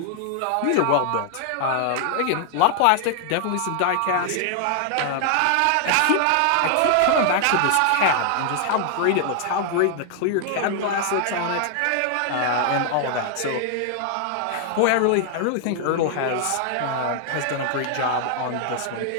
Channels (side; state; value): both; different; correlation 0.00